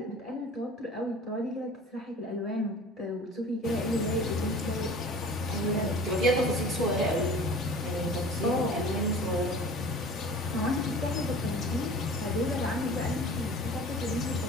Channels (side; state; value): both; normal; correlation 0.42